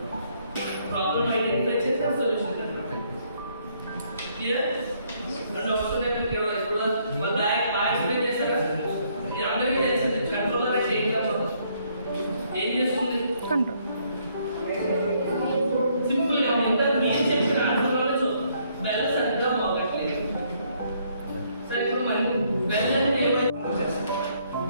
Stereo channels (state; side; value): inverted; both; correlation -0.69